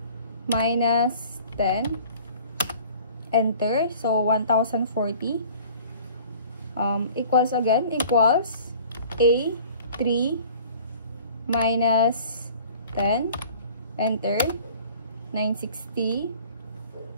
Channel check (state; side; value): inverted; both; correlation -0.48